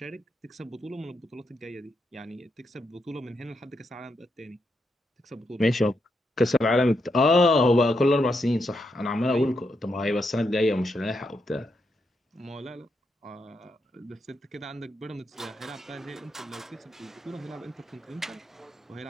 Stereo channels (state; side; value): normal; both; correlation 0.82